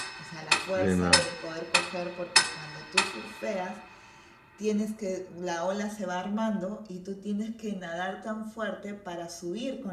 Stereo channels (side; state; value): both; identical; correlation 1.00